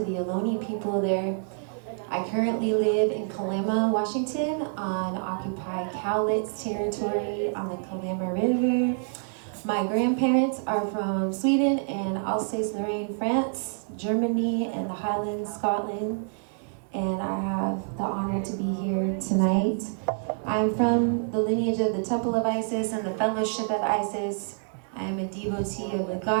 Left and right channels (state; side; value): silent; left; digital silence